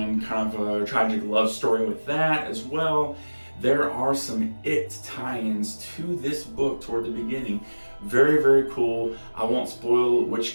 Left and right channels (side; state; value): both; inverted; correlation -1.00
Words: kind of a tragic love story with that as well. there are some It tie-ins to this book toward the beginning. Very, very cool. I won't spoil